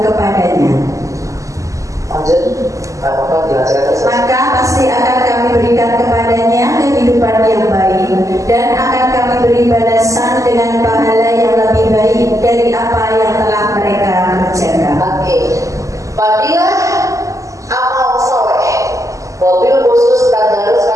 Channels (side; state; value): left; late; 0.16 ms